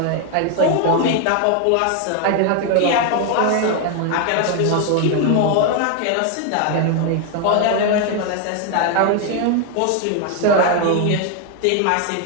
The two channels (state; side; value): different; both; correlation 0.01